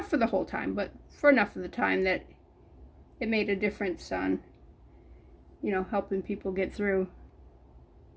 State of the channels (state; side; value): identical; both; correlation 1.00